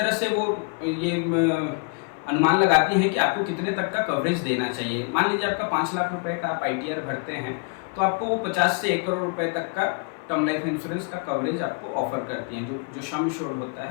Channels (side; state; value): right; quieter; 37.4 dB